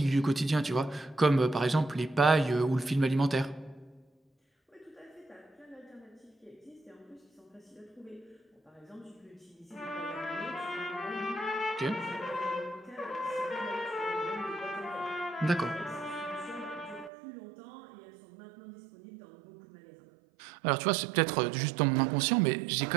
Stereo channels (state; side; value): drops out; left; at 17.1 s